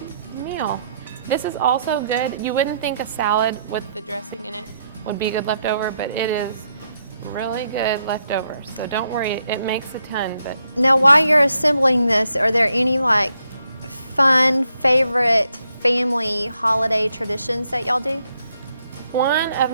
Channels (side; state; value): both; inverted; correlation -0.77